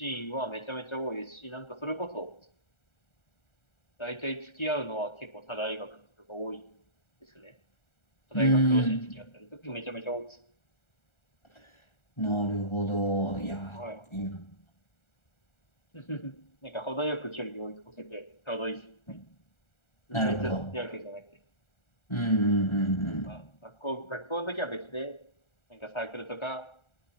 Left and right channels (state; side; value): late; right; 1.4 ms